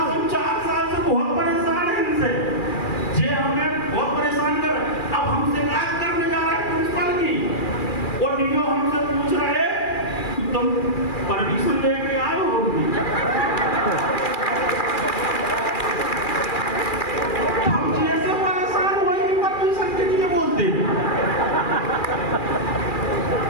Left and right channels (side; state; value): right; late; 2.4 ms